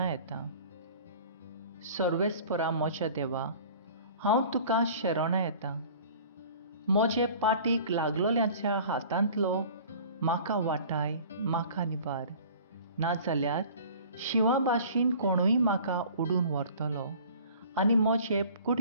येतां. सर्वेस्परा म्हज्या देवा, हांव तुका शरणा येतां. म्हजे पाटीक लागलोल्याच्या हातांतलो म्हाका वाटाय, म्हाका निबार. नाजाल्यार शिवा भाशेन कोणूय म्हाका उडून व्हरतलो आनी म्हजे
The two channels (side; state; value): both; inverted; correlation -0.46